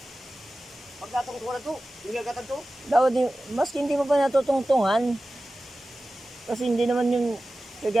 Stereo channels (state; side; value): normal; both; correlation 0.95